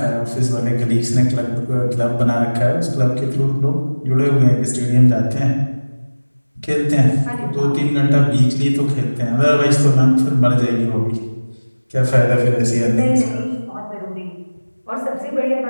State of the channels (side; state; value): both; inverted; correlation -1.00